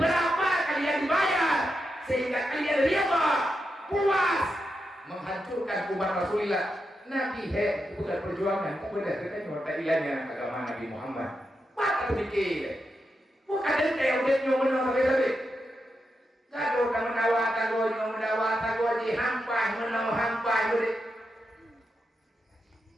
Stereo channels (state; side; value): normal; both; correlation 0.86